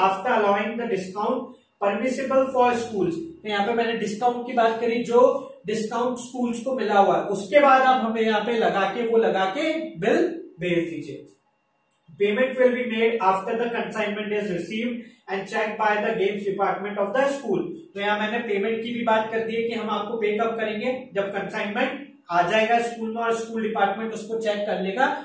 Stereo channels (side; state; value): both; identical; correlation 1.00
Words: allowing the discount permissible for schools. तो यहाँ पे मैंने डिस्काउंट की बात करी, जो डिस्काउंट स्कूल्स को मिला हुआ है, उसके बाद आप हमें यहाँ पे लगा के बिल भेज दीजिए। Payment will be made after the consignment is received and check by the games department of the school. तो यहाँ मैंने पेमेंट की भी बात कर दी है कि हम आपको पे कब करेंगे, जब कंसाइनमेंट आ जाएगा स्कूल में और स्कूल डिपार्टमेंट उसको चेक कर लेगा